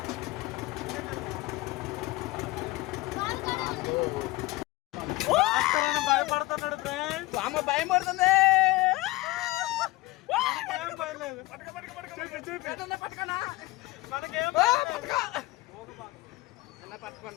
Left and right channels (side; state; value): right; quieter; 20.1 dB